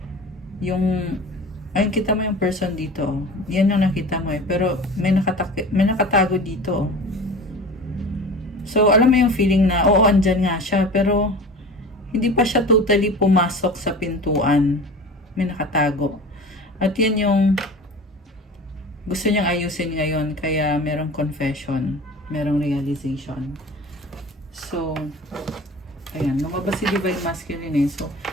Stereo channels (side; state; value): both; normal; correlation 0.37